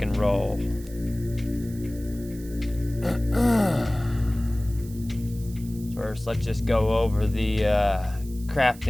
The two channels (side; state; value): right; noise; hiss, 20 dB below the sound